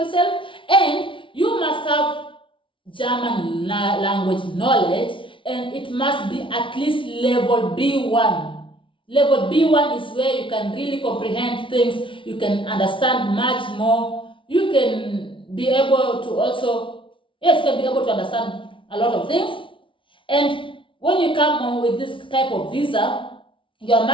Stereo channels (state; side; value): late; right; 0.25 ms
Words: and you must have German language knowledge, and it must be at least level B1. Level B1 is where you can really comprehend things, you can understand much more, you can be able to also, yes, you can be able to understand a lot of things. And when you come on with this type of visa, your